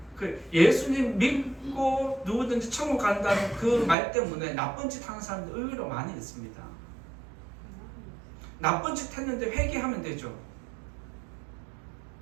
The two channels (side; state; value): left; drops out; at 4.0 s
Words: 예수님 믿고 누구든지 천국 간다는 그 말 때문에 나쁜 짓 하는 사람들 의외로 많이 있습니다. 나쁜 짓 했는데 회개하면 되죠.